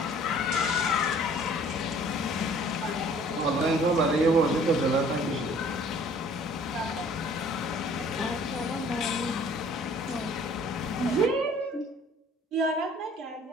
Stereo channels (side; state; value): both; normal; correlation 0.54